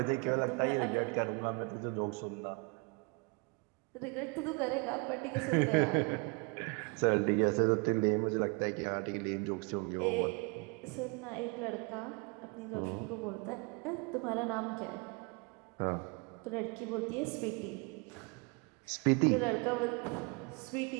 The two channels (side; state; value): left; quieter; 31.4 dB